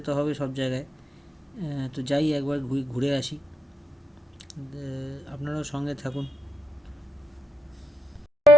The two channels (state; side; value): normal; both; correlation 0.82